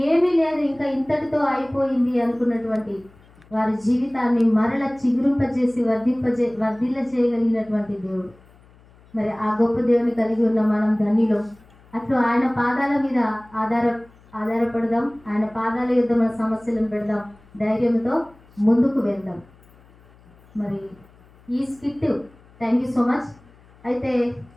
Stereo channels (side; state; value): left; noise; hum, 27 dB below the sound